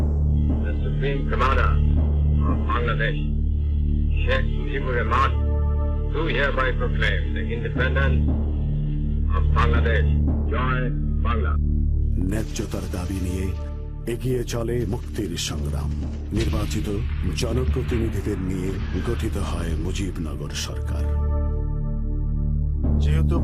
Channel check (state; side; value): identical; both; correlation 1.00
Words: the Supreme Commander of Bangladesh, Sheikh Mujibur Rahman, do hereby proclaim the independence of Bangladesh. Joy Bangla. ন্যায্যতার দাবি নিয়ে এগিয়ে চলে মুক্তির সংগ্রাম। নির্বাচিত জনপ্রতিনিধিদের নিয়ে গঠিত হয় মুজিবনগর সরকার। যেহেতু